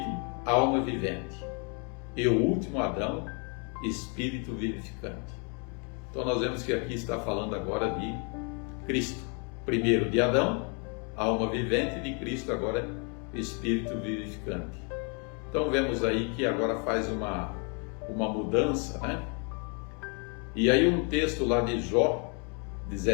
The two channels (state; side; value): quieter; right; 37.0 dB